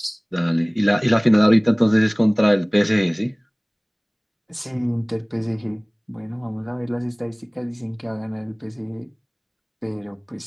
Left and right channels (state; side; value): identical; both; correlation 1.00